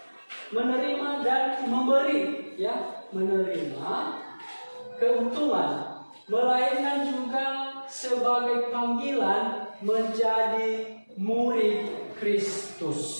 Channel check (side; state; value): both; inverted; correlation -1.00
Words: menerima dan memberi, ya, menerima keuntungan, melainkan juga sebagai panggilan menjadi murid